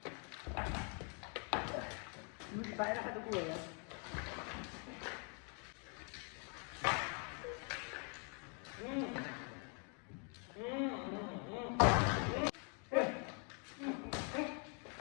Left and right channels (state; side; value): quieter; right; 38.6 dB